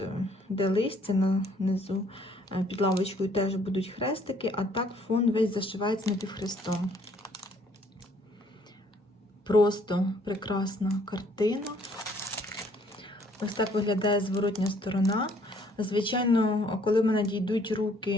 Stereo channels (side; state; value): both; normal; correlation 0.62